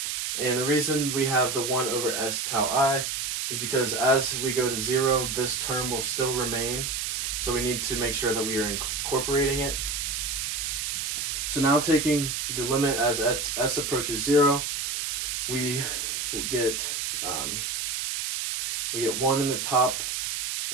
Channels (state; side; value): noise; right; hiss, 2 dB below the sound